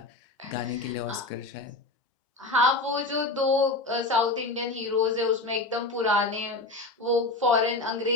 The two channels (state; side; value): quieter; right; 3.1 dB